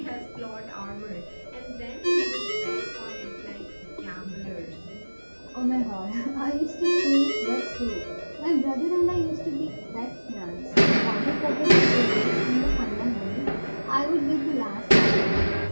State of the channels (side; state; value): both; inverted; correlation -1.00